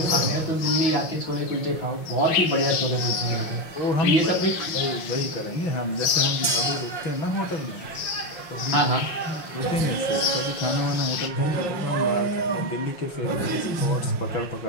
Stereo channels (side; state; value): right; late; 5.7 ms